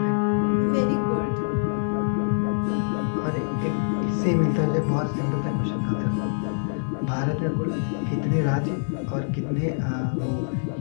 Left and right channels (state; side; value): silent; right; digital silence